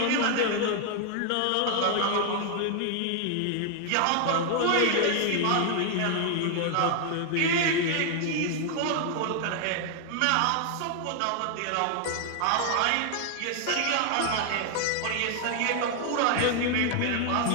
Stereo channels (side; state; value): both; different; correlation 0.00